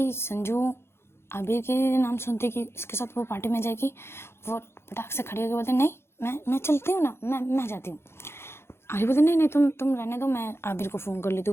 संजू आबिर के नाम सुनते कि उसके साथ वो पार्टी में जाएगी, वो पटाख से खड़ी होकर बोलते नहीं मैं चलती हूँ ना, मैं जाती हूँ। आबिर बोलते नहीं तुम रहने दो, मैं आबिर को फ़ोन कर लेती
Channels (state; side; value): late; right; 0.12 ms